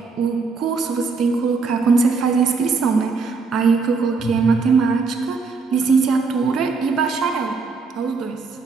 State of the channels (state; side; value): quieter; left; 4.6 dB